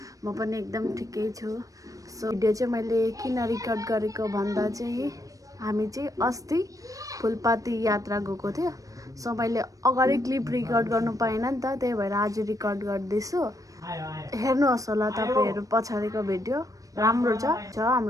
म पनि एकदम ठिकै छु। सो भिडियो चाहिँ मैले किन रिकर्ड गरेको भन्दा चाहिँ हामी चाहिँ अस्ति फुलपाती यात्रा गएको थियो। सो मैले अगाडि क्लिप रिकर्ड गर्नु पाइनँ नि त, त्यही भएर आज रिकर्ड गर्दैछु। हेर्नुहोस् होला तपाईँहरू पछाडिको भिडियो, राम्रो छ,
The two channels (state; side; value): late; left; 0.16 ms